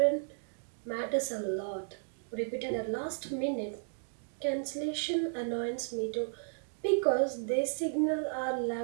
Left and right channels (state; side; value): silent; left; digital silence